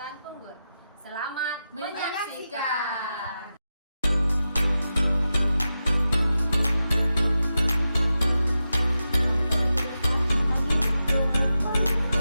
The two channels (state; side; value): inverted; both; correlation -0.90